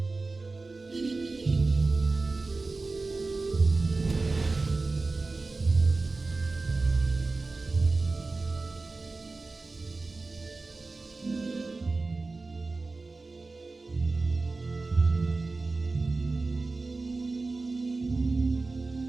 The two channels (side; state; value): left; quieter; 3.6 dB